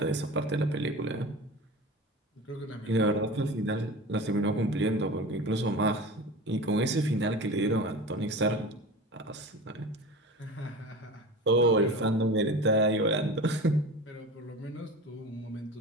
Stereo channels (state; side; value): normal; both; correlation 0.33